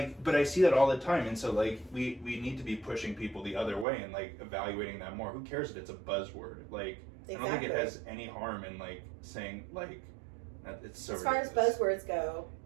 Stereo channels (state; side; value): drops out; left; at 3.9 s